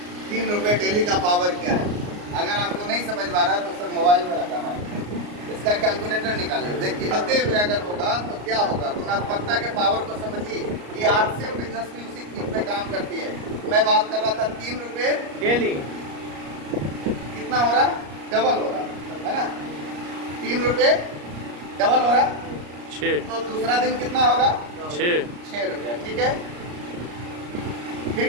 3 रुपये डेली का पावर क्या है। अगर आपको नहीं समझ में आ रहा है तो सर मोबाइल में रखा है, इसका कैलकुलेटर निकालिए, देखिए आते हुए अगर होगा तो क्या होगा। गुणात्मकता के पावर को समझिए। ये आर्ट्स बिजनेस भी उसी चीज पे काम करती है। मैं बात कर रहा था 3 रुपये डेली। कितना हो रहा? डबल हो रहा है ना। 3 रुपये डबल हो रहा, 6 तो दूसरा दिन कितना होगा? 6 रुपया, ठीक है। फिर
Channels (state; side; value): late; left; 34 ms